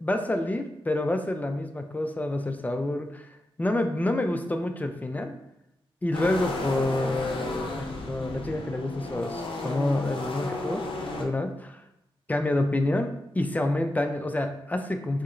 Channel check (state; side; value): normal; both; correlation 0.89